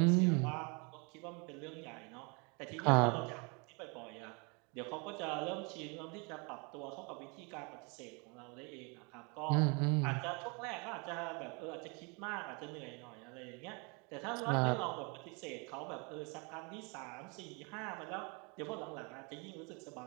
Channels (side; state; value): left; quieter; 31.8 dB